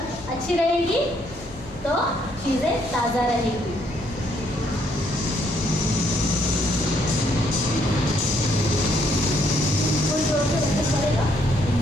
अच्छी रहेगी तो चीज़ें ताज़ा रहेगी। कोई जोर से बच्चे पड़ेगा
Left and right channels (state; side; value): normal; both; correlation 0.70